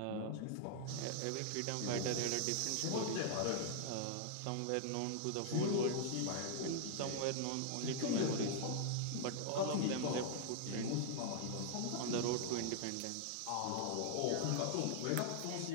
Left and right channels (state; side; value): different; both; correlation -0.01